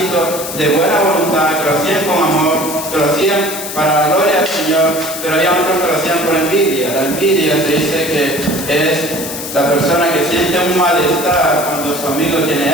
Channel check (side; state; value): left; noise; hiss, 8 dB below the sound